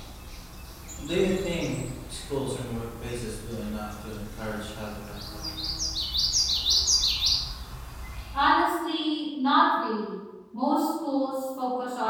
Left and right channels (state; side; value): identical; both; correlation 1.00